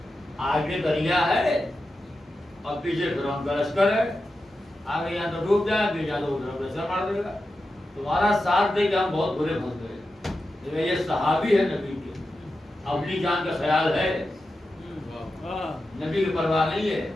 آگے دریا ہے اور پیچھے فرعون کا لشکر ہے، آگے یہاں تو ڈوب جائے، پیچھے جا تو لشکر مار دے گا، تمہارا ساتھ دے کے ہم بہت برے پھنس گئے۔ یہ صحابی ہے نبی کے، اپنی جان کا خیال ہے، نبی کی پرواہ نہیں ہے۔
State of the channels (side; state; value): both; normal; correlation 0.91